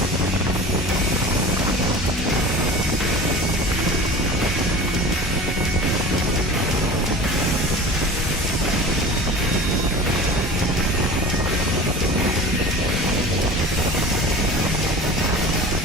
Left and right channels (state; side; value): normal; both; correlation 0.37